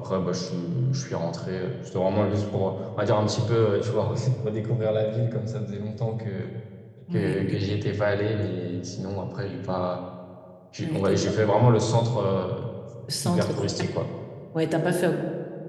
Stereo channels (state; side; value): identical; both; correlation 1.00